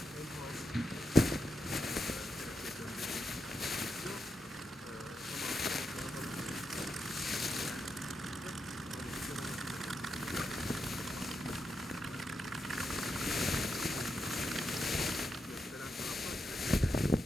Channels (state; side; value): normal; both; correlation 0.85